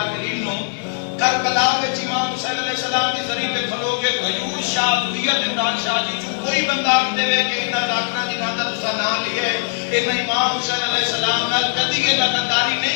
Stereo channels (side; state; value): right; silent; digital silence